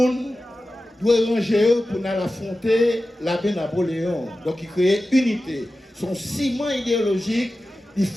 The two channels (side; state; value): both; normal; correlation 0.94